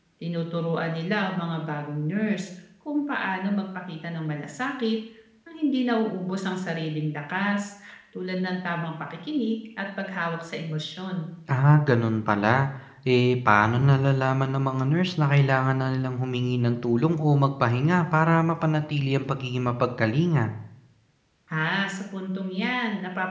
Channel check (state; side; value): identical; both; correlation 1.00